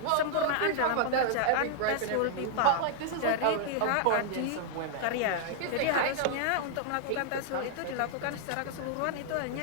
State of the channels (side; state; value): both; different; correlation -0.01